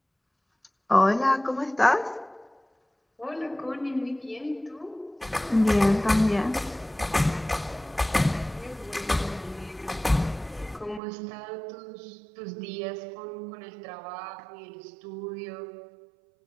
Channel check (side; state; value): left; drops out; at 11.0 s